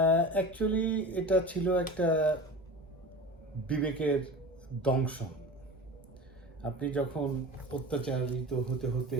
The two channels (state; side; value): normal; both; correlation 0.34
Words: অ্যাকচুয়ালি এটা ছিল একটা বিবেকের দংশন। আপনি যখন অত্যাচারিত হতে হতে